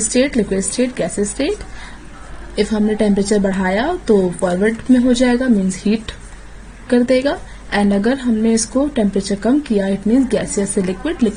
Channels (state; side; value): identical; both; correlation 1.00